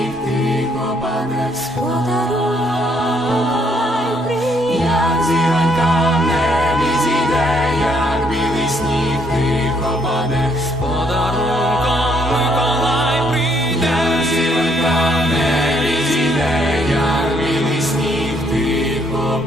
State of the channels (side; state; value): both; normal; correlation 0.70